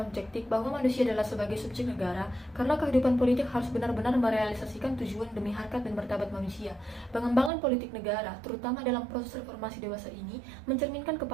objektif bahwa manusia adalah sebagai subjek negara, karena kehidupan politik harus benar-benar merealisasikan tujuan demi harkat dan martabat manusia. Pengembangan politik negara, terutama dalam proses reformasi dewasa ini, mencerminkan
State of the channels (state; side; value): drops out; left; at 7.5 s